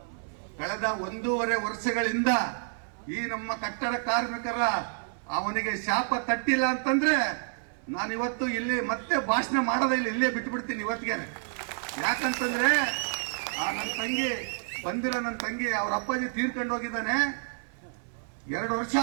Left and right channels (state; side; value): silent; left; 58 dB below the other